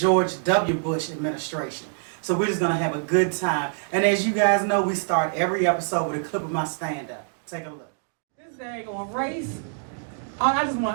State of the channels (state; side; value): silent; left; 62 dB below the other